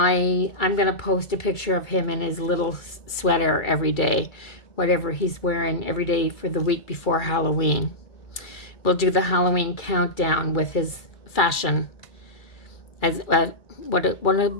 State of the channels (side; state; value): right; late; 2.3 ms